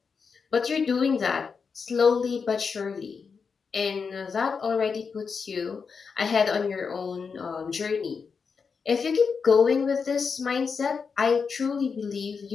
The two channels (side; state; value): right; quieter; 5.5 dB